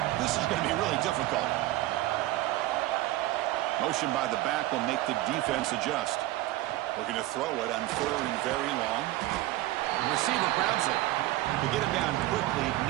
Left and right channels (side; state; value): left; quieter; 16.7 dB